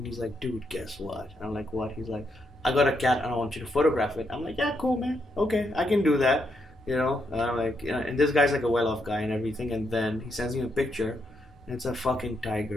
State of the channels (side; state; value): both; normal; correlation 0.79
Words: he's like, "Dude, guess what?" I'm like, "What?" He's like, "I got a cat and I want you to photograph it." I'm like, "Yeah, cool, man. Okay, I can do that." You know, and I'm like, and this guy's like a well-off guy and everything, and then he sends me a picture, and it's a fucking